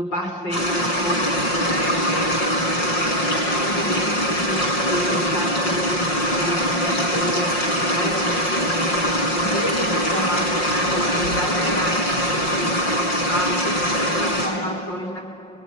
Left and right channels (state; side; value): late; right; 5.6 ms